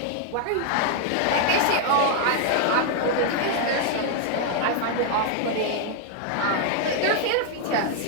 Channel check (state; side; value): different; both; correlation 0.00